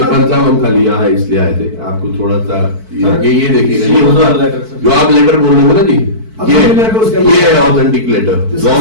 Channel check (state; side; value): late; left; 4.5 ms